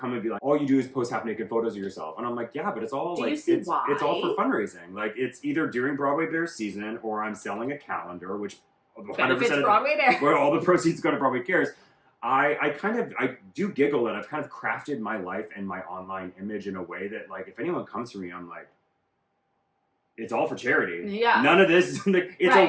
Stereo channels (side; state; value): both; identical; correlation 1.00